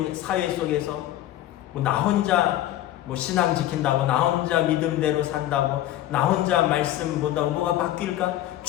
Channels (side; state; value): right; quieter; 13.6 dB